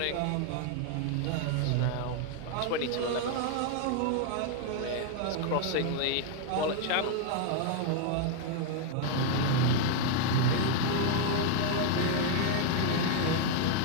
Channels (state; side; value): different; both; correlation 0.00